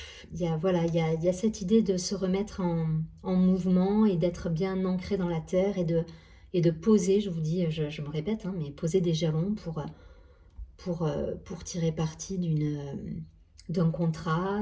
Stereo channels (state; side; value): identical; both; correlation 1.00